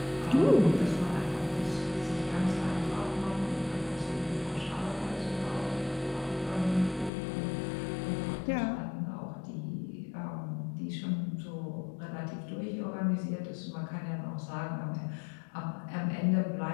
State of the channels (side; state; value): right; drops out; at 7.1 s